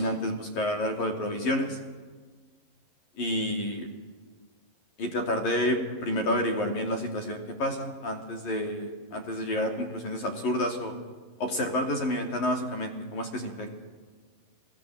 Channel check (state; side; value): late; right; 11 ms